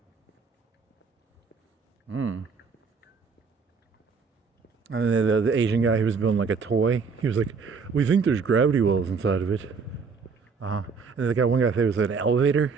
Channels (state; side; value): quieter; left; 5.3 dB